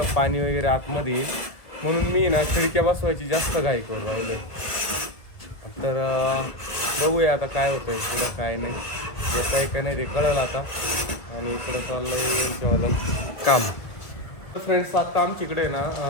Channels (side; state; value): right; late; 1.4 ms